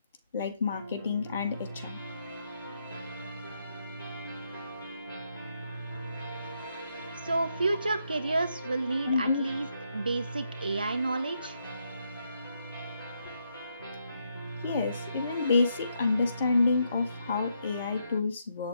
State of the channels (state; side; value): inverted; both; correlation -0.78